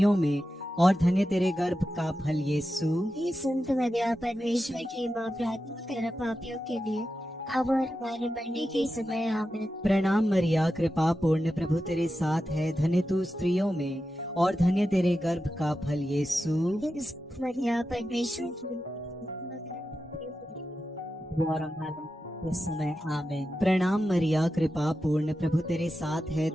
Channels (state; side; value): normal; both; correlation 0.90